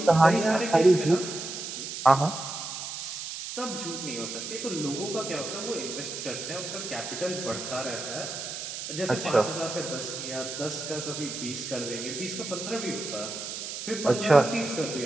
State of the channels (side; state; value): right; noise; hiss, 7 dB below the sound